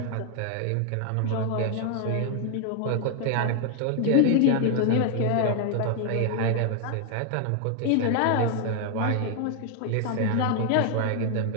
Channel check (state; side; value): different; both; correlation 0.00